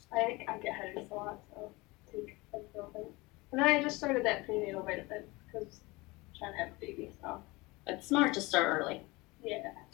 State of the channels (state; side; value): quieter; right; 23.1 dB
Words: I get headaches a lot, so I take ibuprofen. And then I just started that prenatal vitamin because I'm trying to have a baby, so. It's smart to start early. Yeah.